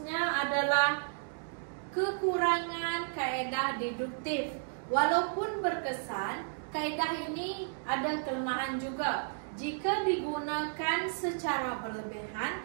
adalah kekurangan kaedah deduktif. Walaupun berkesan, kaedah ini ada kelemahan juga. Jika digunakan secara berlebihan,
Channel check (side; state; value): left; silent; digital silence